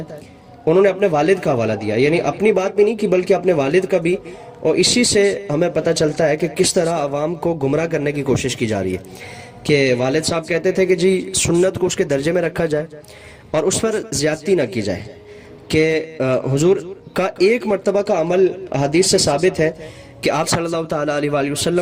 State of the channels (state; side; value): identical; both; correlation 1.00